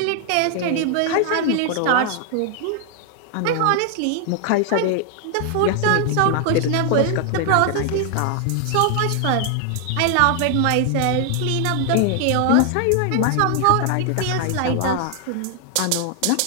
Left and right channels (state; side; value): different; both; correlation 0.00